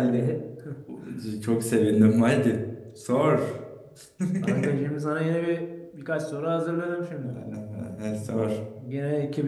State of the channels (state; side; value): identical; both; correlation 1.00